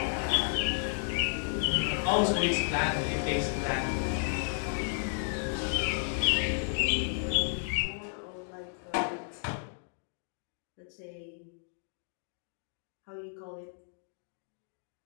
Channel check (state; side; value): silent; right; digital silence